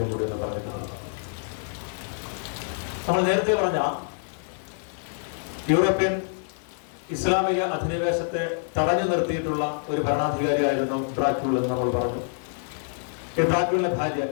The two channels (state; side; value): silent; right; digital silence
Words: കൂടി ഒന്ന് പറയുന്നതാണ്. നമ്മൾ നേരത്തെ പറഞ്ഞ യൂറോപ്യൻ ഇസ്ലാമിക അധിനിവേശത്തെ തടഞ്ഞു നിർത്തിയിട്ടുള്ള ഒരു ഭരണാധികാരിയായിരുന്നു ഡ്രാക്യൂൾ എന്ന് നമ്മൾ പറഞ്ഞു. ഈ ഡ്രാക്യൂളിന്റെ ഭാര്യ